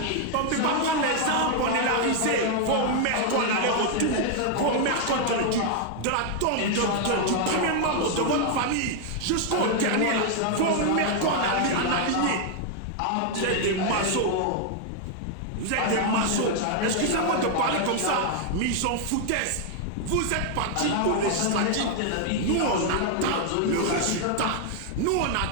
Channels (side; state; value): both; different; correlation 0.00